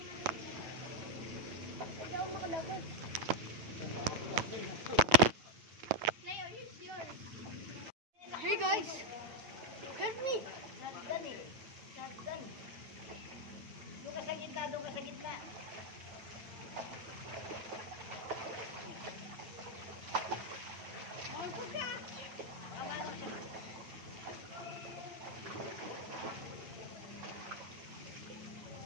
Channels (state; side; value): late; left; 9.2 ms